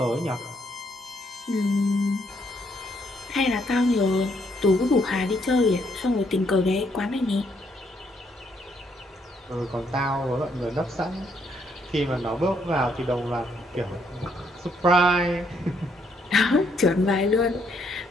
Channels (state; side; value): normal; both; correlation 0.72